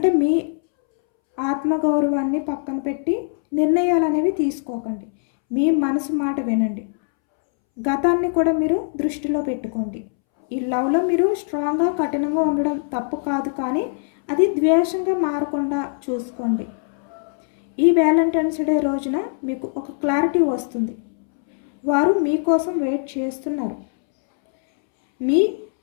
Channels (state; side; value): silent; right; 65 dB below the other